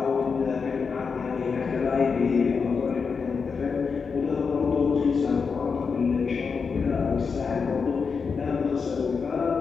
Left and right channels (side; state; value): right; quieter; 5.4 dB